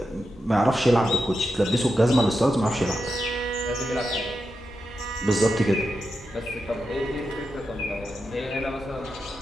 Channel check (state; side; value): normal; both; correlation 0.88